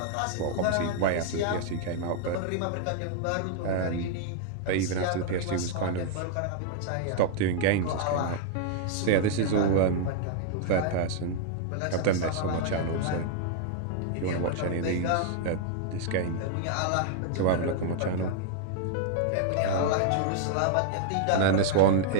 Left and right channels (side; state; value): both; different; correlation -0.01